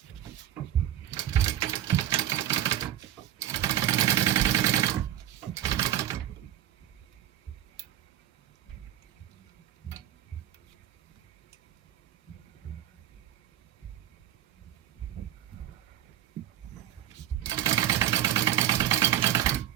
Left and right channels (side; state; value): left; quieter; 12.2 dB